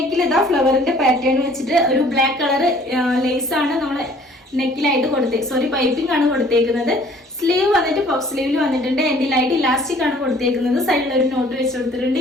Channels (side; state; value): both; normal; correlation 0.55